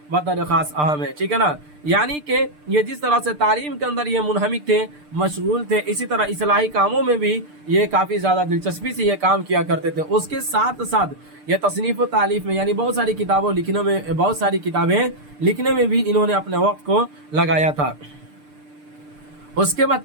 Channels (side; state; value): left; late; 6.7 ms